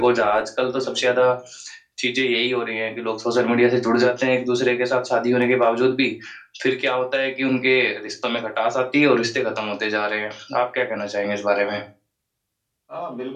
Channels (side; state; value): both; identical; correlation 1.00